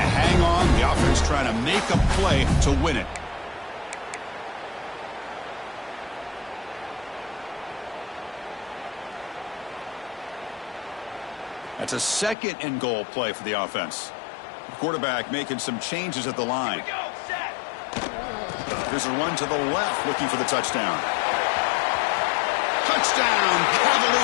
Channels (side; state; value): right; drops out; at 12.4 s